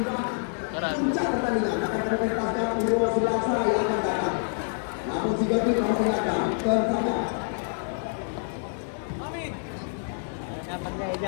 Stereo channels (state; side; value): silent; right; digital silence